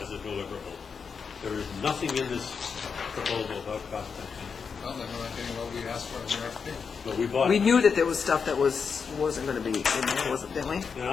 as a deliverable. There is nothing in this proposal about cost benefit. Well, then we're not getting what we asked for in the RFP. But we bought We it. knew that there was stuff that wasn't gonna be in there, wasn't, didn't we? And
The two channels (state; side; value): quieter; right; 5.9 dB